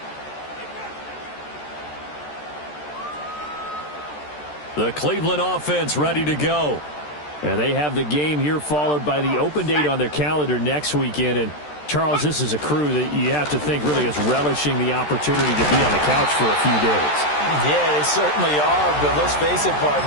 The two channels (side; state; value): right; late; 13 ms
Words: The Cleveland offense ready to go. And they have the game here followed by the open date on their calendar next weekend. And Charles, this is a crew that you have to think really is relishing the opportunity to be on the couch for a few days. Yeah, they certainly are, but let's face it,